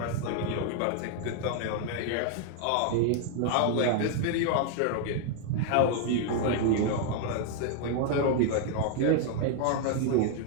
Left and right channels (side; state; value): both; different; correlation 0.00